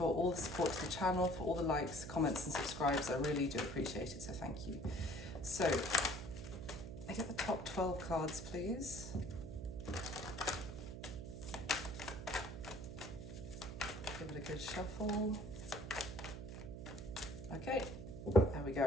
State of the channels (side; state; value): right; noise; hum, 9 dB below the sound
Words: all the support to the channel, for all the likes, comments and subscribes. I really do appreciate it, so thank you. So I get the top 12 cards, please. Give it a good shuffle. Okay, there we